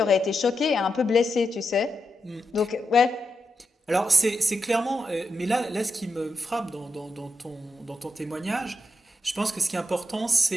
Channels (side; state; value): both; normal; correlation 0.86